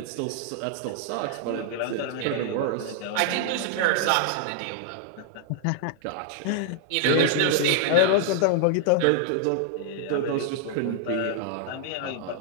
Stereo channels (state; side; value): different; both; correlation -0.01